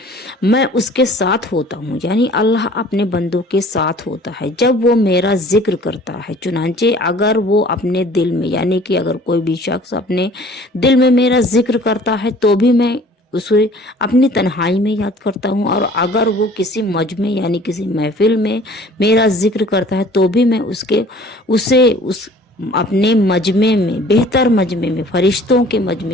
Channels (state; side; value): normal; both; correlation 0.50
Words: मैं उसके साथ होता हूँ। यानी अल्लाह अपने बंदों के साथ होता है जब वो मेरा जिक्र करता है। चुनांचे अगर वो अपने दिल में, यानी कि अगर कोई भी शख्स अपने दिल में मेरा जिक्र करता है तो भी मैं उसे अपनी तन्हाई में याद करता हूँ, और अगर वो किसी मजमे यानी किसी महफिल में मेरा जिक्र करता है तो भी मैं उस अपने मजमे में, बेहतर मजमे में, फरिश्तों के